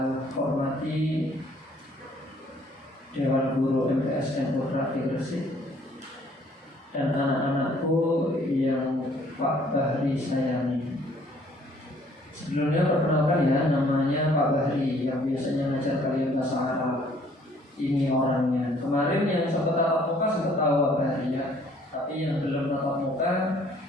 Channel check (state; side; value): normal; both; correlation 0.60